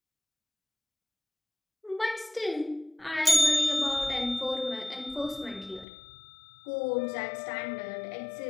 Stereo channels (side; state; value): right; drops out; at 5.9 s